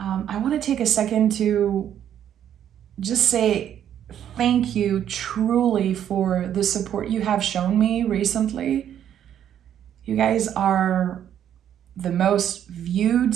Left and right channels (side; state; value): left; quieter; 10.0 dB